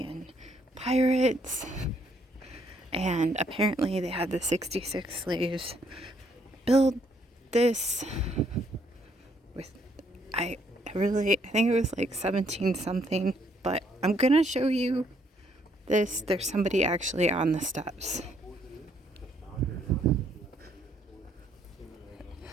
and pirates. And apparently they had the 66 slaves build this with, I think it was like 17 something, but I'm gonna show you this. There's somebody actually on the steps.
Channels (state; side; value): normal; both; correlation 0.69